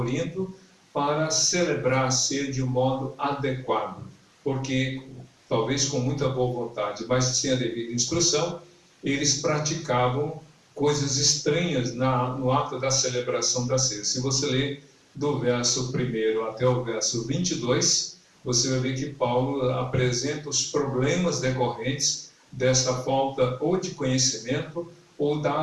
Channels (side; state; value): both; identical; correlation 1.00